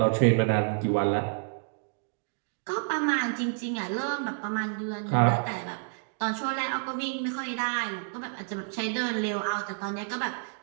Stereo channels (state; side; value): silent; left; digital silence